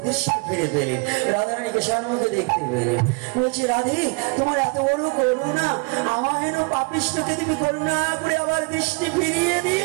ফিরে পেলেন। রাধারানীকে সম্মুখে দেখতে পেলেন। বলছি, রাধে, তোমার এত বড় করুণা, আমার হেন পাপিষ্ঠকে তুমি করুণা করে আবার দৃষ্টি ফিরিয়ে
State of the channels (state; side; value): quieter; left; 32.1 dB